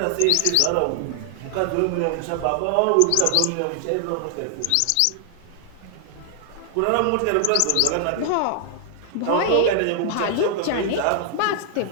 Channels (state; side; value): different; both; correlation 0.00